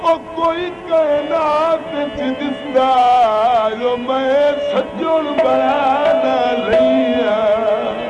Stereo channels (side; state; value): both; identical; correlation 1.00